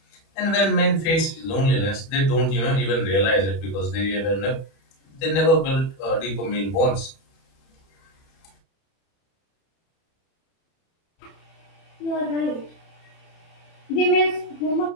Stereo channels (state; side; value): late; right; 31 ms